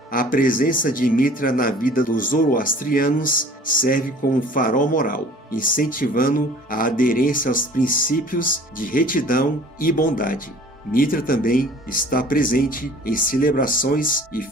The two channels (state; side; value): normal; both; correlation 0.49